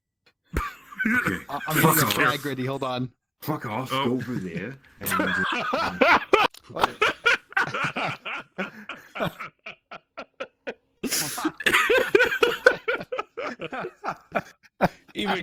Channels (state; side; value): identical; both; correlation 1.00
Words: I'm getting the flag ready. Hold on. Fuck off. Oh. Go over there.